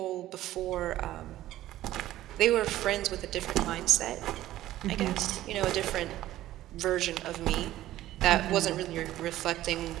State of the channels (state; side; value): quieter; left; 14.5 dB